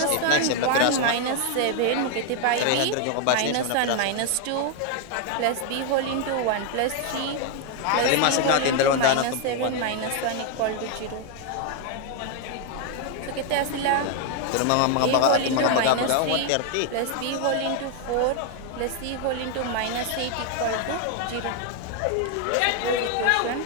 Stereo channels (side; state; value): both; different; correlation 0.00